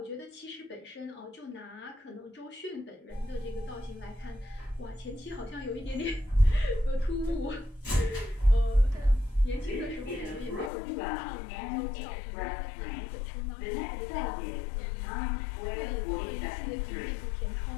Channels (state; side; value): drops out; right; at 10.7 s